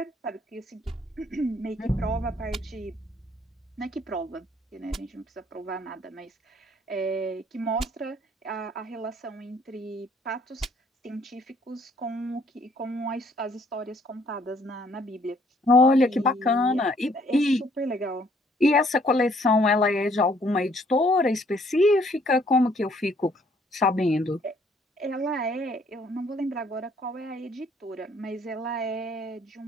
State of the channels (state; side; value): normal; both; correlation 0.64